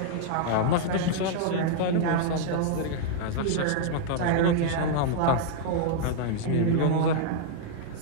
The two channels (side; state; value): both; different; correlation -0.01